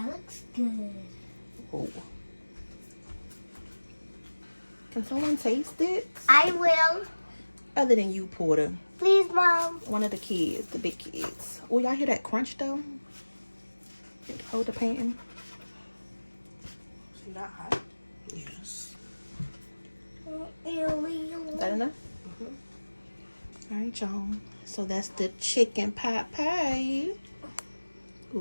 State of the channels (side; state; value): both; inverted; correlation -1.00